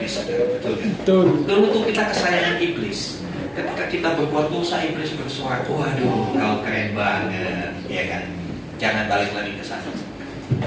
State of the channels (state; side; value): identical; both; correlation 1.00